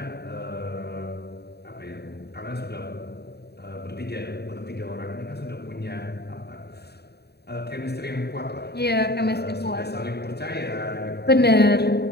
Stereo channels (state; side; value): late; right; 0.48 ms